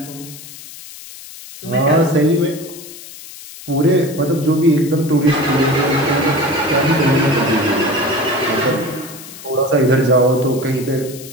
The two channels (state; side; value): noise; left; hiss, 16 dB below the sound